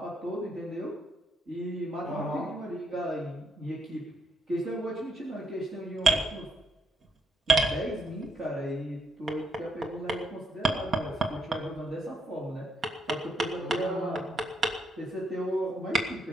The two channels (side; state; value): both; normal; correlation 0.76